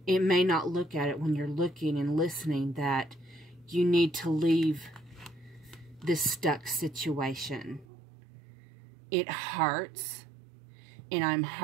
It may not look at it when you're looking and listening that you need to leave this stuck situation. It hurts. And I'm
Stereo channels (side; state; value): left; drops out; at 7.9 s